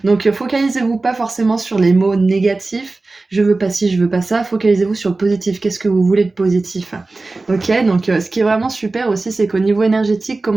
Donc focalisez-vous pas forcément sur les mots négatifs, je veux pas ci, je veux pas ça, focalisez-vous sur le positif, qu'est-ce que vous voulez de positif. Ok, donc ce qui est vraiment super aussi, c'est qu'au niveau énergétique,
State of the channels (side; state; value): left; quieter; 3.4 dB